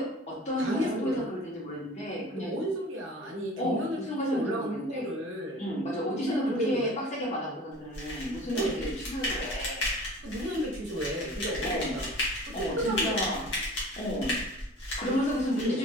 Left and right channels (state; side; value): normal; both; correlation 0.42